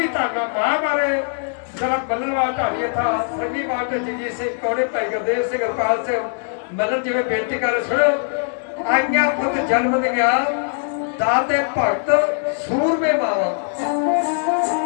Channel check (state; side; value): silent; right; digital silence